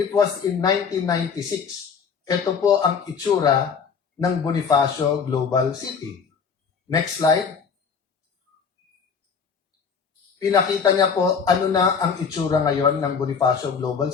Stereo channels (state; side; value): quieter; right; 6.1 dB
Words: was in 1996. Ito po ang itsura ng Bonifacio Global City. Next slide. Pinakita niya po ano na ang itsura ngayon ng Bonifacio Global